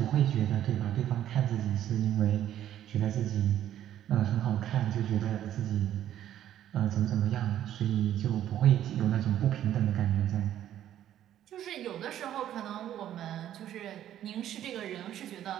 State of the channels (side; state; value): left; quieter; 11.5 dB